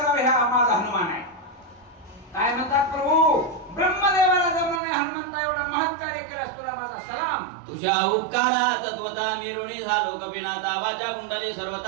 हा माझा हनुमान आहे काय म्हणतात प्रभू ब्रह्मदेवाला जमलं नाही हनुमंता एवढा महत्कार्य केलंस तुला माझा सलाम तुझ्या उपकारा तत्वता मिरुणी झालो कपिनाथा वाचा कुंडली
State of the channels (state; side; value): drops out; left; at 4.8 s